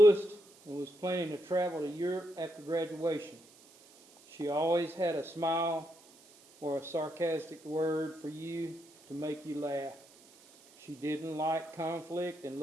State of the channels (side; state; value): right; noise; hiss, 25 dB below the sound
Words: and was planning to travel to Europe after graduation. She always had a smile or a sarcastic word for you to make you laugh. She didn't like conflict and